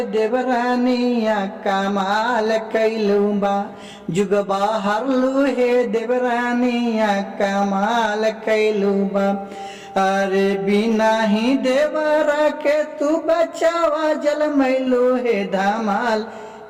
देवरानिया कमाल कैलू बा, जुग बाहर लुहे देवरानिया कमाल कैलू बा। अरे बिना ही देवरा के तू बचावा जल मैलू है धमाल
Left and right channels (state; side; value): identical; both; correlation 1.00